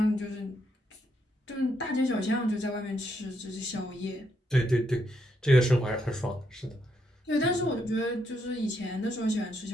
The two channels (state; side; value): normal; both; correlation 0.77